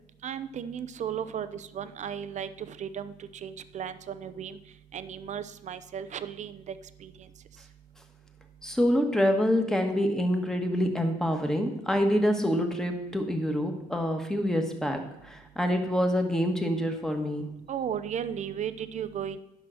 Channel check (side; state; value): both; normal; correlation 0.79